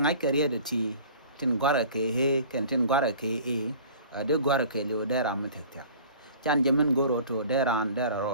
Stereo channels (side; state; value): both; inverted; correlation -0.46